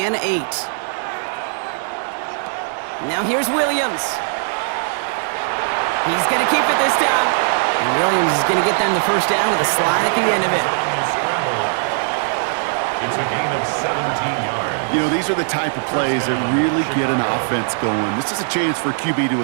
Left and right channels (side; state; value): left; silent; 60 dB below the other